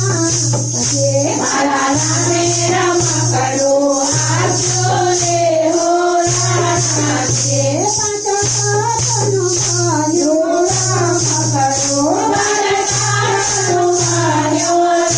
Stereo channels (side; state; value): both; identical; correlation 1.00